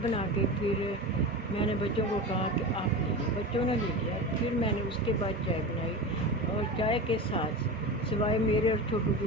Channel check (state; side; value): normal; both; correlation 0.27